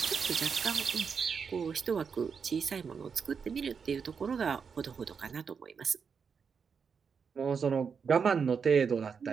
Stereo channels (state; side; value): quieter; left; 6.1 dB